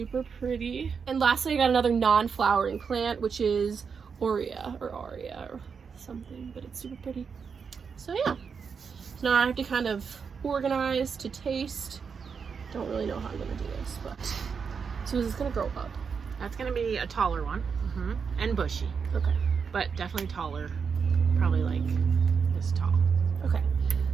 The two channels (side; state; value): left; quieter; 6.0 dB